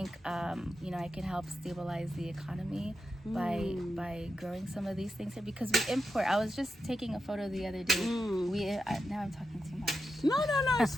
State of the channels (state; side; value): normal; both; correlation 0.88